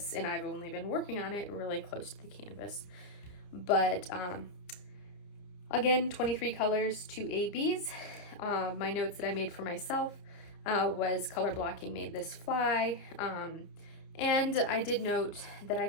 and I've only been working on it really close to the canvas. But again, 23 colors, 2 ABs. My notes that I made for myself was color blocking made this fly. And I did note that I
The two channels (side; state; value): right; late; 30 ms